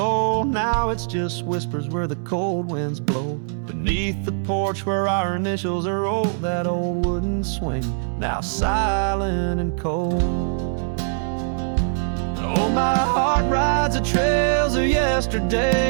Now it's just whispers where the cold winds blow. Beneath the porch where our initials are rolled, that old wooden swing, now silent and cold. Oh, my heart rides the trails of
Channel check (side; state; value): left; silent; digital silence